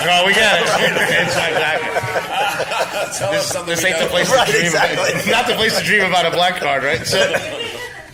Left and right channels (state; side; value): identical; both; correlation 1.00